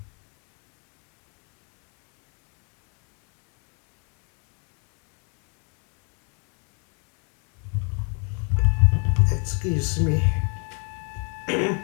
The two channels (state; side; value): quieter; right; 38.5 dB